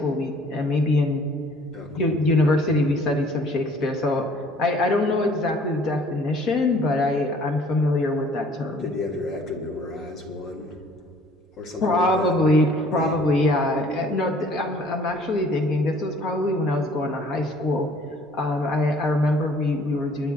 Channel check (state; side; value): normal; both; correlation 0.56